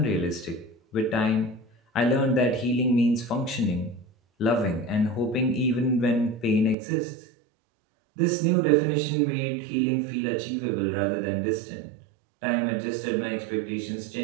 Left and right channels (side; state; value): left; drops out; at 6.8 s